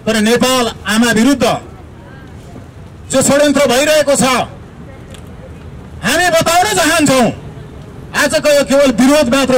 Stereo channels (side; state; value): both; identical; correlation 1.00